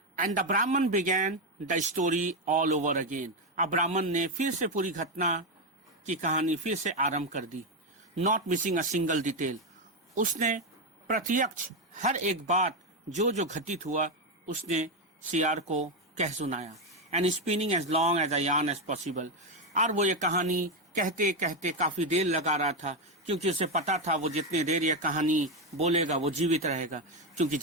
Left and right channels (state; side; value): normal; both; correlation 0.08